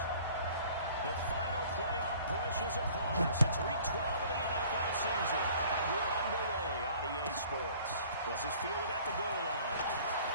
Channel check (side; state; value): both; inverted; correlation -0.51